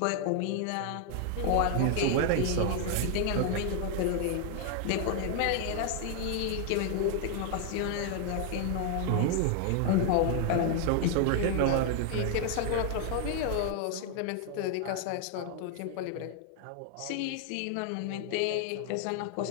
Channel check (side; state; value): both; different; correlation 0.00